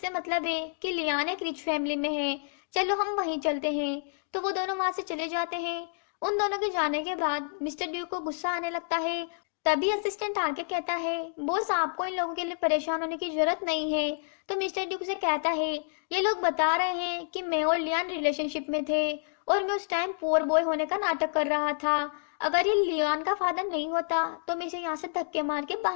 मतलब है कि लियान एक रिच फैमिली में है, चलो हम वहीं चलते हैं। तो वो दोनों वहां से चले जाते हैं। उन दोनों के जाने के बाद मिस्टर ड्यूक को गुस्सा आने लगता है। तभी असिस्टेंट आके कहता है बॉस आपको इन लोगों के लिए परेशान होने की जरूरत नहीं है। तो मिस्टर ड्यूक से कहता है ये लोग बता रहे हैं कि मैं और लियान रिलेशनशिप में थे और मैं उस टाइम पुअर बॉय होने का नाटक कर रहा था। अगर ये लियान का फादर नहीं होता तो मैं इसे यहाँ से धक्के मार के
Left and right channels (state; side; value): silent; right; digital silence